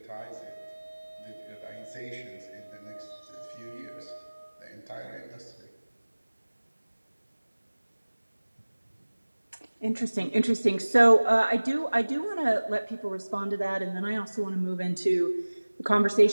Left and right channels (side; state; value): both; inverted; correlation -1.00